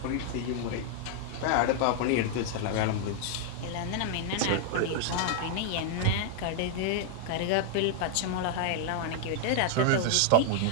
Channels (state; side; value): different; both; correlation 0.00